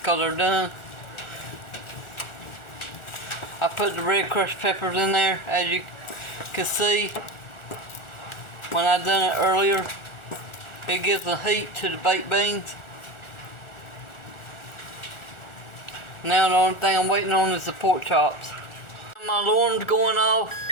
they're done. I put the red crushed peppers in there, as you can see. When I done it earlier, it gives the heat to the baked beans. Now the only thing I'm waiting on is the pork chops. My alarm's going off.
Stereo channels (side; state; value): right; late; 1.4 ms